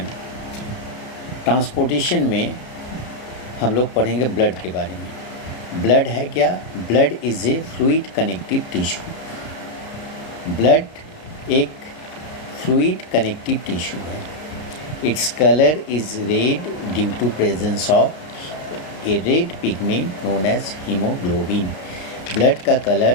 ट्रांसपोर्टेशन में हम लोग पढ़ेंगे ब्लड के बारे में। ब्लड है क्या? Blood is a fluid connective tissue. Blood एक फ्लूइड कनेक्टिव टिश्यू है। Its colour is red due to presence of a red pigment known as haemoglobin. Blood का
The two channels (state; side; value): late; right; 33 ms